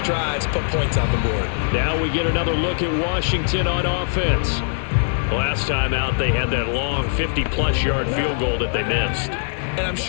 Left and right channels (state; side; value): silent; right; digital silence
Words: put points on the board. Now we get another look at Washington on offense. Last time out, they had that long 50-plus yard field goal that they missed. And I'm